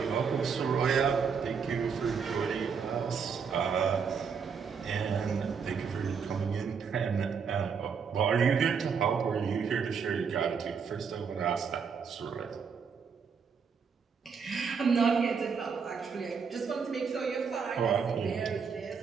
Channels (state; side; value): quieter; left; 6.1 dB